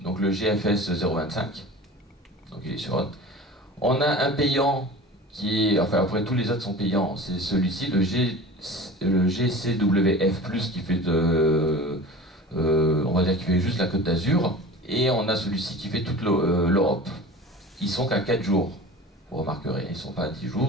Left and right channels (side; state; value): both; normal; correlation 0.37